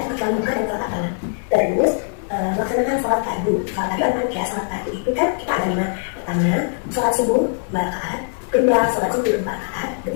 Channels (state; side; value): silent; right; 64 dB below the other